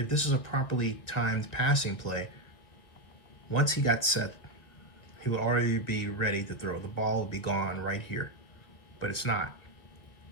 this is a properly timed passing play, once he got set, he will already be ready to throw. The ball will be gone right here, but it's not.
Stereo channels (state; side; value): late; right; 1.8 ms